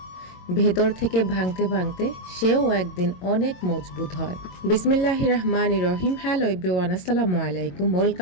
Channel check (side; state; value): right; late; 22 ms